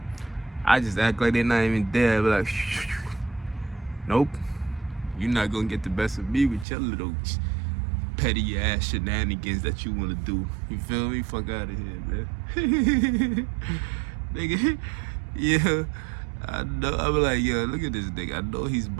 I just act like they're not even there. I'd be like, nope, you're not gonna get the best of me with your little petty ass shenanigans that you wanna do. You feel me? Fuck out of here, man. Nigga, yeah, I know. I be like, yo, look at this nigga. I know he's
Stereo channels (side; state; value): left; drops out; at 6.7 s